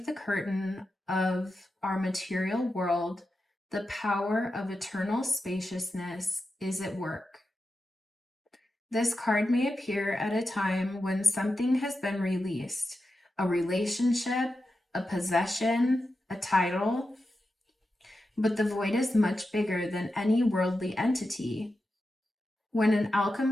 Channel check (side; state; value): both; normal; correlation 0.90